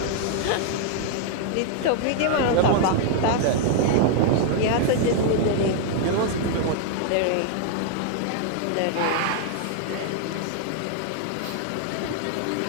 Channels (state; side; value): different; both; correlation -0.01